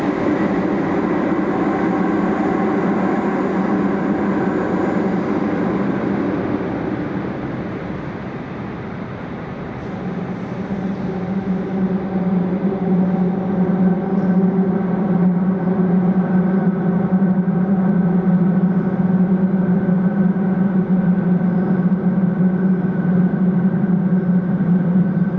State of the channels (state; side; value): identical; both; correlation 1.00